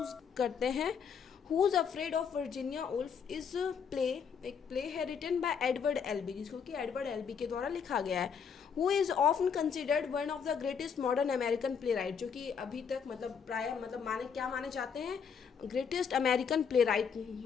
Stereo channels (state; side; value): quieter; right; 6.7 dB